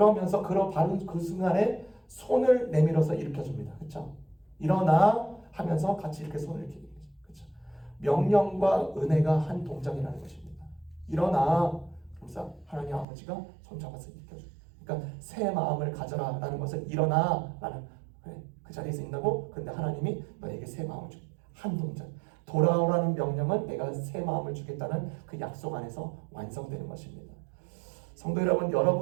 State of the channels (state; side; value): drops out; left; at 13.1 s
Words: 바로 그 순간에 손을 내밀어서 일으켜줍니다. 그렇죠? 일어나 하면서 같이 이렇게 손을 이렇게. 그렇죠? 명령과 은혜가 한 동작이라는 것입니다. 일어나. 그래서 하나님 아버지가 손 잡아서 일으켜줍니다. 그러니까 새 마음을 가져라라는 것은 일어나라는 그 자리에서 있다고. 근데 하나님이 너에게 새 마음을 줍니다. 한 동작. 돌아오라는 명령은 내가 새 마음을 주겠다는 그 약속 안에서 완성되는 것입니다. 성도 여러분,